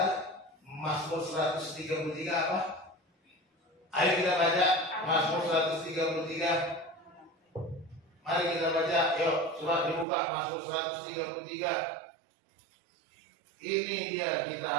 Mazmur 133 apa? Ayo kita baca Mazmur 133. Mari kita baca, yuk surat dibuka Mazmur 133. Ini dia, kita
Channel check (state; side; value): drops out; left; at 10.1 s